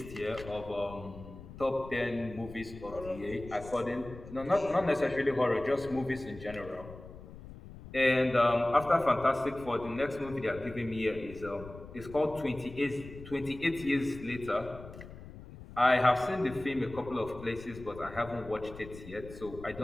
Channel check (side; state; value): left; noise; rumble, 15 dB below the sound